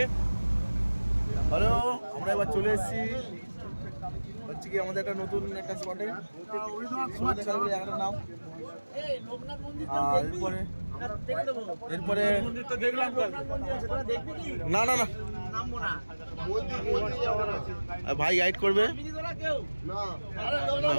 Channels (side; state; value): both; inverted; correlation -1.00